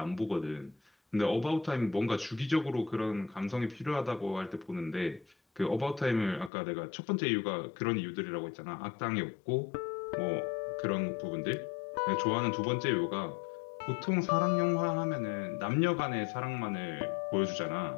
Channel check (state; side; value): drops out; right; at 6.5 s